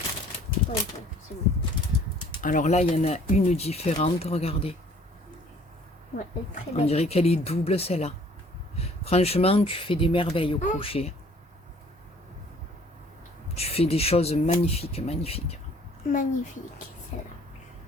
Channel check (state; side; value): normal; both; correlation 0.56